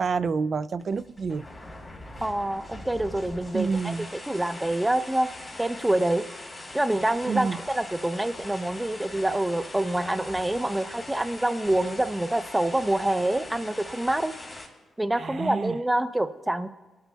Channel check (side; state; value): both; normal; correlation 0.97